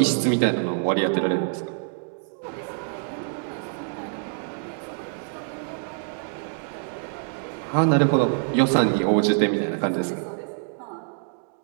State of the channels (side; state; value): left; silent; digital silence